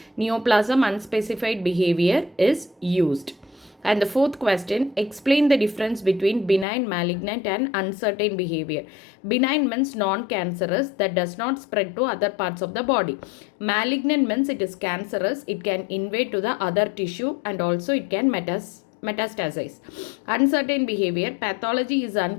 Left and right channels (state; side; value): drops out; right; at 6.7 s